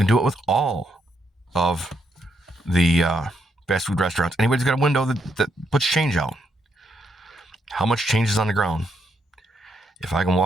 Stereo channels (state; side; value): normal; both; correlation 0.77